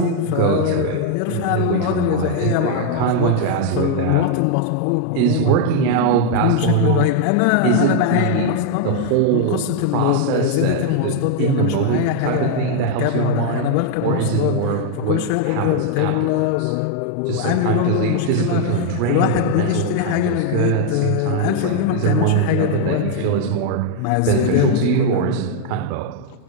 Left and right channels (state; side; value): different; both; correlation 0.00